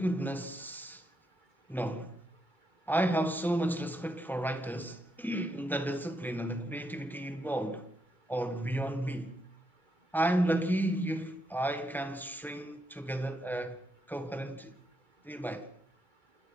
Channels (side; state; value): both; normal; correlation 0.80